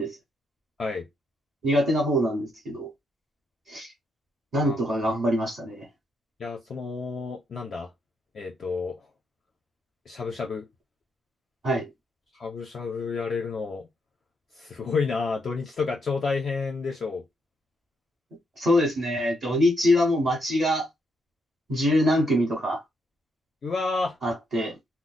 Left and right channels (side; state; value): both; normal; correlation 0.78